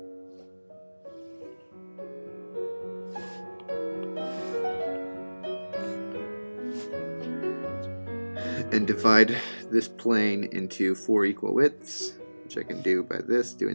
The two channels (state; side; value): inverted; both; correlation -1.00